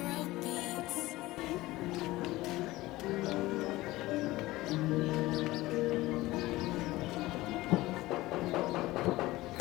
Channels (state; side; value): quieter; right; 18.5 dB